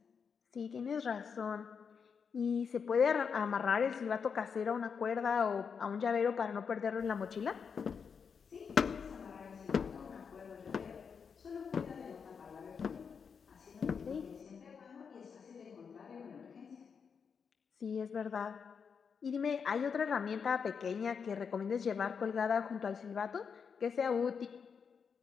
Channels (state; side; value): quieter; right; 6.3 dB